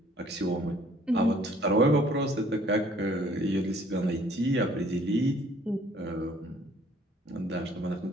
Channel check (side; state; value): both; normal; correlation 0.58